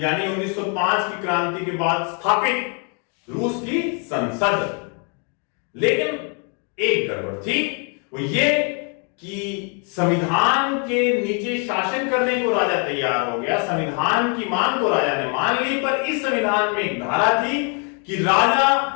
1905 की क्रांति के बाद स्थापित रूस की संसद। लेकिन एक गड़बड़ थी, वो ये कि संविधान के नीचे शासन करने को राजा तैयार हो गया, संविधान की मांग को राजा ने मान ली, पर इस संविधान में एक धारा थी कि राजा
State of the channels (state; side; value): quieter; right; 38.0 dB